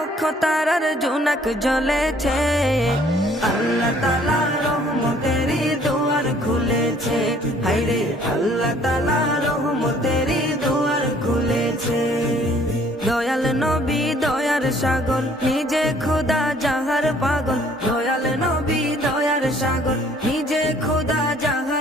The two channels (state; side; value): normal; both; correlation 0.59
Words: তারার জোনাক জ্বলেছে। আল্লাহ তাআলা রহমতেরই দুয়ার খুলেছে, হায়রে আল্লাহ তাআলা রহমতেরই দুয়ার খুলেছে। দয়াল নবী দয়ার সাগর, নিজে খোদা যাহার পাগল। দয়াল নবী দয়ার সাগর, নিজে খোদা